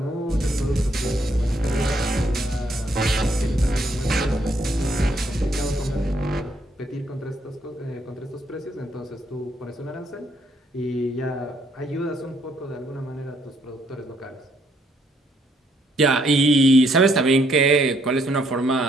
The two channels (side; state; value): both; normal; correlation 0.70